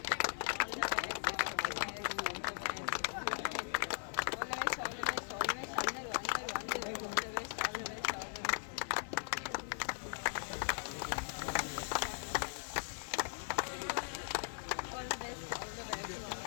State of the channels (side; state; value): right; silent; digital silence